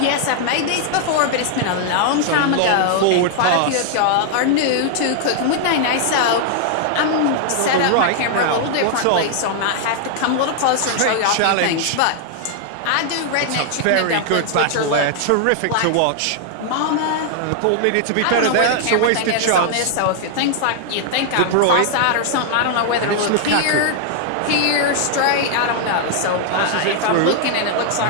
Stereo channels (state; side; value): different; both; correlation 0.00